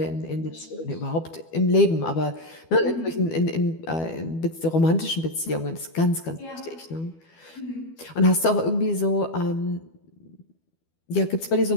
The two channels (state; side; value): late; right; 12 ms